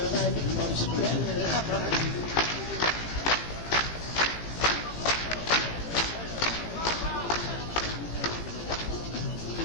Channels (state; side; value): late; right; 18 ms